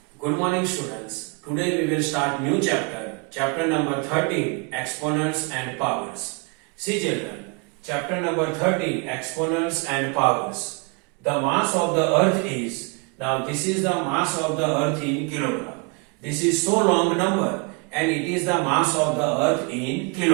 Good morning students. Today we will start new chapter number 13, exponents and powers. See children, chapter number 13, exponents and powers. The mass of the earth is, now this is the mass of the earth in kilogram. This is so long number and it is the mass of the earth in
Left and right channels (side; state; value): left; quieter; 32.5 dB